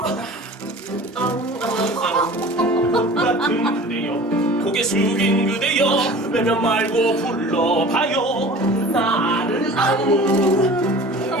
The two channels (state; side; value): normal; both; correlation 0.42